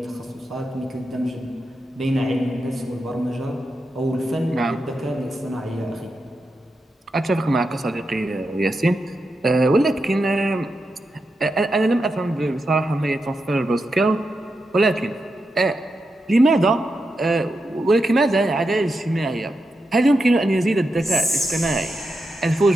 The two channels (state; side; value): normal; both; correlation 0.87